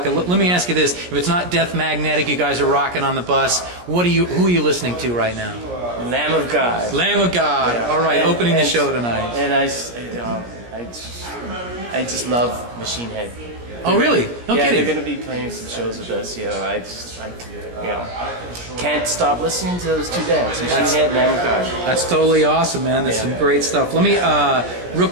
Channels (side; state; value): left; late; 17 ms